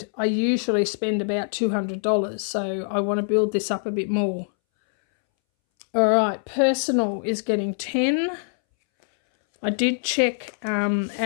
I usually spend about $200. So I want to build this up a bit more. All right, personal is getting 10. I did check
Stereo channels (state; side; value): silent; right; 63 dB below the other